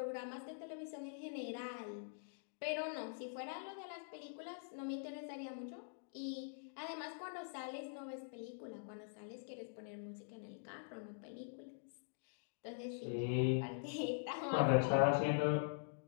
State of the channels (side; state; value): right; silent; digital silence